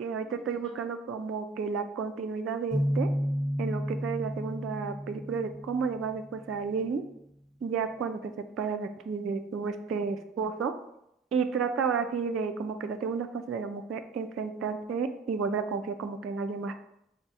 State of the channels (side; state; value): left; quieter; 4.0 dB